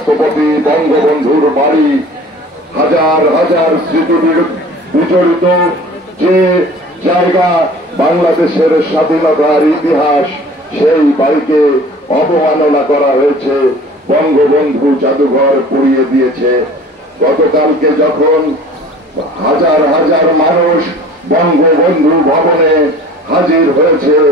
বঙ্গবন্ধুর বাড়ি হাজার হাজার স্মৃতি বিজড়িত যে জায়গা, বাংলাদেশের স্বাধীনতার ইতিহাস, সেই বাড়িকে অবমাননা করা হয়েছে, বঙ্গবন্ধু জাদুঘর পুড়িয়ে দিয়েছে। গতকালকে যখন হাজার হাজার মানুষ বঙ্গবন্ধু ভবনে হাজির হয়েছে,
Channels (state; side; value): normal; both; correlation 0.46